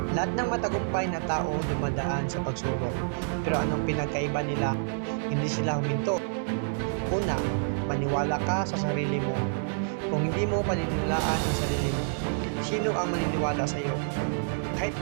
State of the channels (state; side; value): silent; left; digital silence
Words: Lahat ng matagumpay na tao dumadaan sa pagsubok. Pero anong pinagkaiba nila? Hindi sila huminto. Una, maniwala ka sa sarili mo. Kung hindi mo paniniwalaan ang sarili mo, sino ang maniniwala sa iyo? Kahit